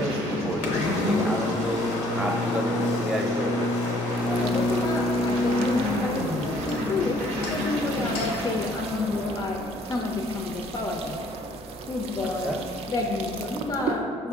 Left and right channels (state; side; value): normal; both; correlation 0.60